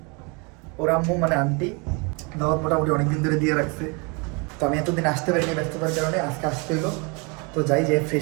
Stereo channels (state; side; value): quieter; left; 31.2 dB